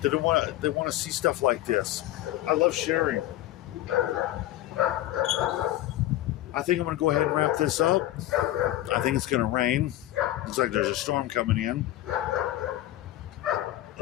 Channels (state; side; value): quieter; right; 14.8 dB